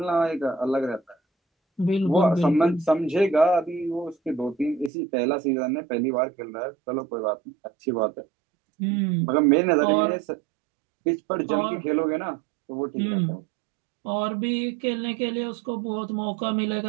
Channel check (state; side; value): drops out; left; at 4.9 s